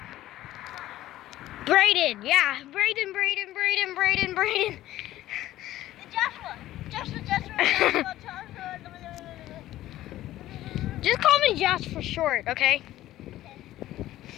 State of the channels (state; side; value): quieter; right; 14.6 dB